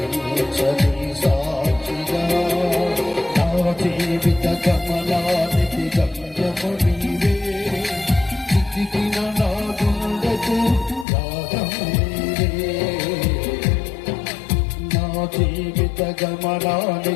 సాక్షిగా నా జీవిత గమనానికి గమ్యము నీవే చితికిన నా గుండెకు రాగము నీవే నా జీవిత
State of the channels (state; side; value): drops out; right; at 11.1 s